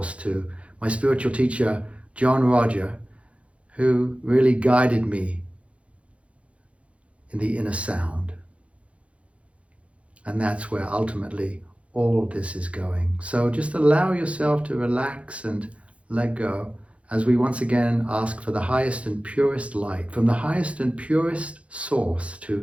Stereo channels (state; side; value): late; left; 0.062 ms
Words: to my spiritual teacher, John Roger, who really guided me in the inner sound. And that's where ultimately all this is going. So just allow yourself to relax and let go as we once again ask for the highest and purest light from the highest and purest source